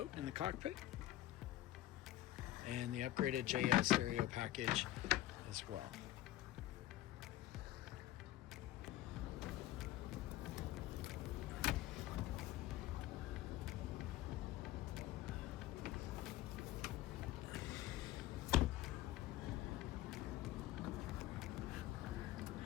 in the cockpit. And the upgraded JS stereo package as well.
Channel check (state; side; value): quieter; right; 15.1 dB